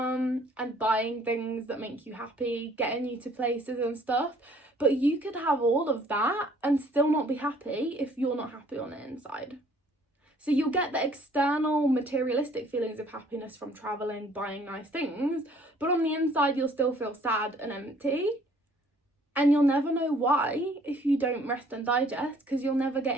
and buying things that make you happy, getting you to places and stuff. But you could have all of that and still not be happy if you're not happy on the inside. So you'll get the external materialistic feelings of happiness from traveling, buying nice things, but on the inside you'll still feel sad and empty. And you'll never know why if you don't rest and digest, because you'll never get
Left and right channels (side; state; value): both; normal; correlation 0.59